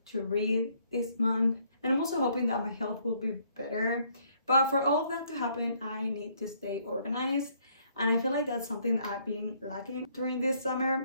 to read this month, and I'm also hoping that my health will be better. But for all of that to happen, I need to stay organized. And I feel like that's something that I've been lacking during this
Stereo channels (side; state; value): both; inverted; correlation -0.67